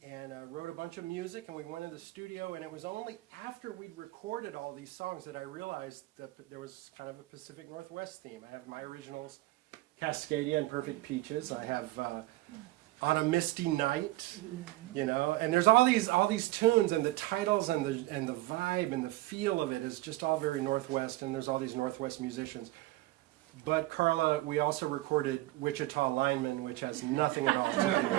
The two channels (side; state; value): left; quieter; 18.5 dB